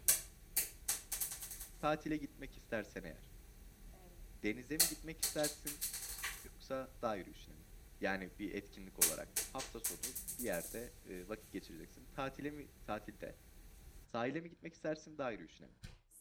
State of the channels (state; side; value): identical; both; correlation 1.00